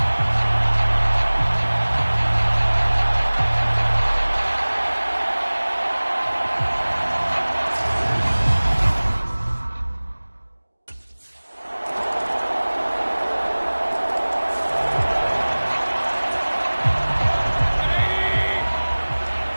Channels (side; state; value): both; inverted; correlation -1.00